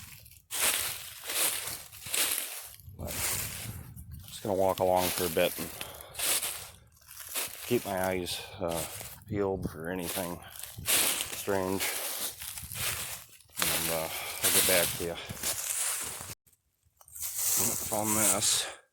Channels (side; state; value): both; identical; correlation 1.00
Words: But I'm just gonna walk along for a bit and keep my eyes peeled for anything strange, and I'll get back to you. Found this.